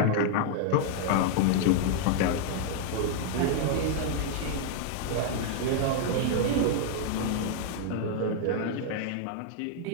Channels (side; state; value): both; different; correlation 0.00